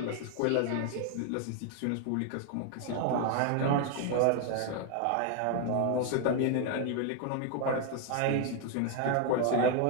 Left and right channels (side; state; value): both; different; correlation 0.00